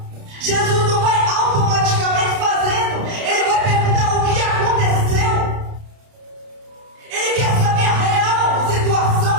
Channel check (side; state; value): left; late; 30 ms